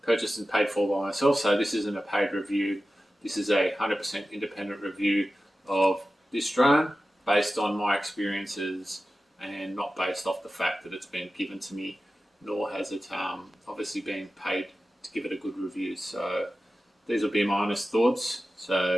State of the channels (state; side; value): normal; both; correlation 0.94